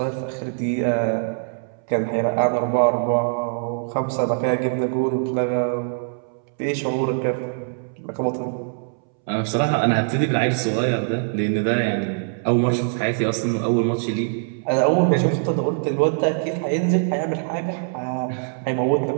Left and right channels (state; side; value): silent; left; 64 dB below the other